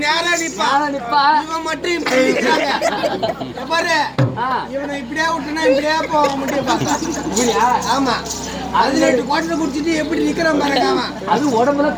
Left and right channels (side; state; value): both; identical; correlation 1.00